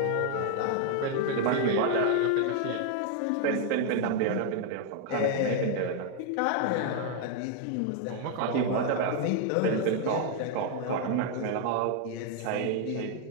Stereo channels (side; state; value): both; different; correlation 0.00